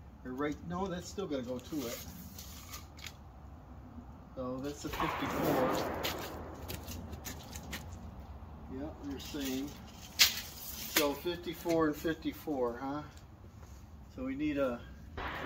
or right, no, that's still going to go to it. So that's a 54. Yep, you're saying. So 54 and 54, huh? So we need a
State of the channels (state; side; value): identical; both; correlation 1.00